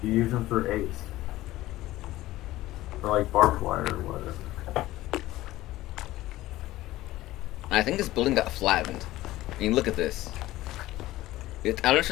You use them for ace. For like barbed wire or whatever. I think this building got flattened. I mean, look at this. I don't know if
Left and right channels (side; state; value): right; quieter; 16.5 dB